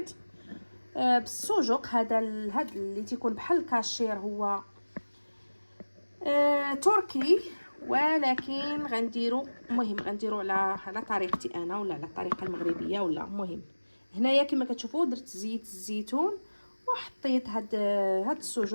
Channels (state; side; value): inverted; both; correlation -1.00